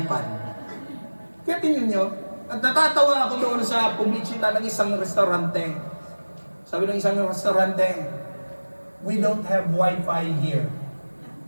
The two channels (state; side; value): inverted; both; correlation -1.00